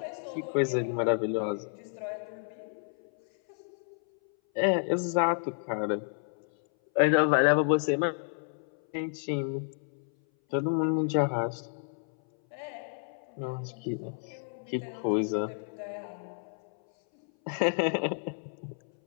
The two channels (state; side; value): silent; right; 57 dB below the other